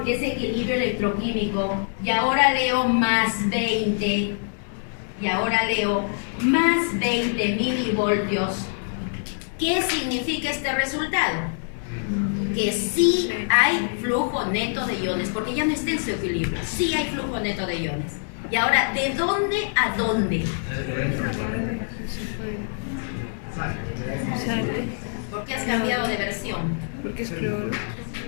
que es equilibrio electroquímico, y ahora leo más 20, y ahora leo más 20 milivoltios, ¿qué significa este resultado? Que sí hay flujo neto de iones, porque ya no está en su equilibrio, sí hay flujo neto de iones. Y ahora, ¿de dónde a dónde? Sale. ¿Por qué has cambiado de versión? Porque es cloro.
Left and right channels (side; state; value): right; silent; 62 dB below the other